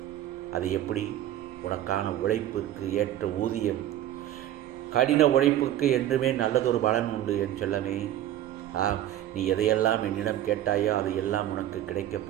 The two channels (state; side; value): quieter; left; 12.5 dB